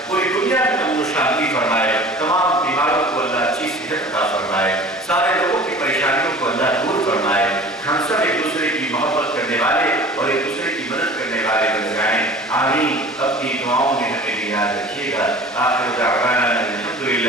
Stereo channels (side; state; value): both; normal; correlation 0.42